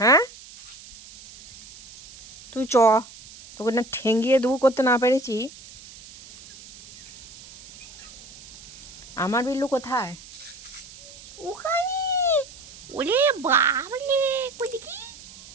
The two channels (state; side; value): noise; right; hiss, 18 dB below the sound